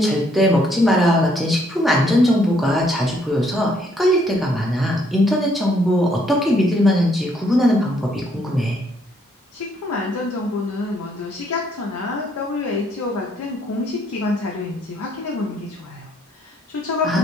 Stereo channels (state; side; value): normal; both; correlation 0.68